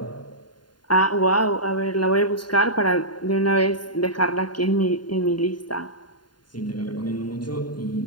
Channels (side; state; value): right; late; 0.71 ms